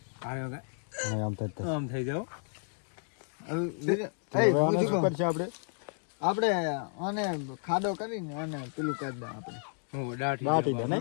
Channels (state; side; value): silent; right; 56 dB below the other